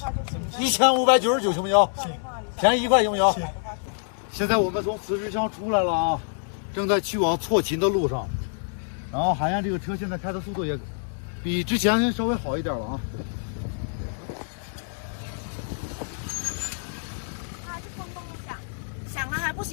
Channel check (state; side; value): silent; right; digital silence